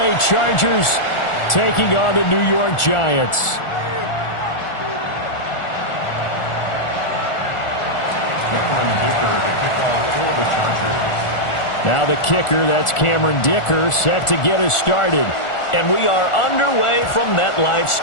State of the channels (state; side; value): late; right; 1.4 ms